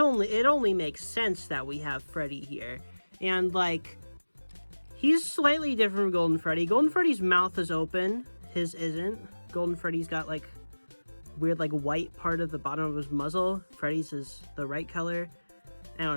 makes sense that we have Freddy here, and, like, he's slightly different from Golden Freddy. Golden Freddy's mouth is open, his isn't. Golden Freddy's got, like, weird, like, white part of the bottom of his muzzle. Freddy's is the right color. I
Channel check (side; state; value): both; inverted; correlation -1.00